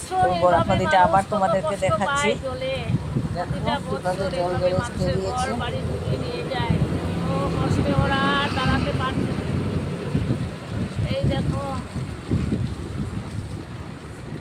তো বরাক এইভাবে নদীটা মানুষ আবার কত তোমাদেরকে কষ্ট দেখাচ্ছি। পায় জলে। প্রতিটা দেখো কিভাবে বছর জল এইভাবে মানুষের ঘর বেরিয়েছে। বাড়ি ডুবিয়ে নিয়ে যায়। ও কষ্টে ওরা আর দাঁড়াতে পারছে না। এই দেখো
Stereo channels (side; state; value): both; identical; correlation 1.00